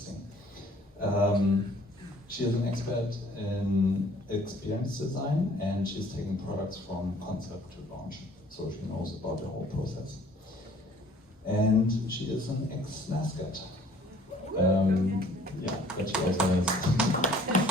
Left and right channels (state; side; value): normal; both; correlation 0.55